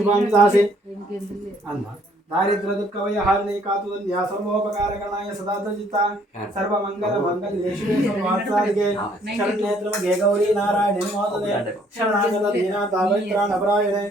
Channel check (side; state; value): both; normal; correlation 0.63